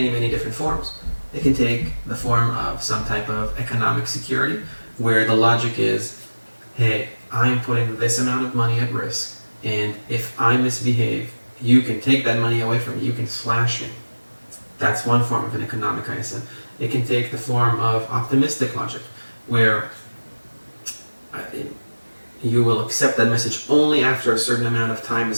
many different forms. It can take the form of some type of economic security, where the logic is, hey, I'm putting this amount of money at risk And if I misbehave, you can take that money away from me. You can slash me. That's one form of an economic ISM. It can take the form of optimistic logic, where you will accept that message only after a certain amount of time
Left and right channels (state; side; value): inverted; both; correlation -1.00